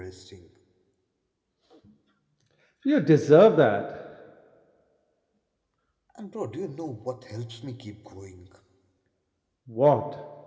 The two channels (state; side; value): identical; both; correlation 1.00